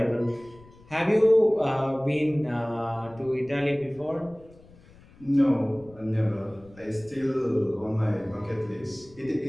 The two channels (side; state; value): left; noise; rumble, 24 dB below the sound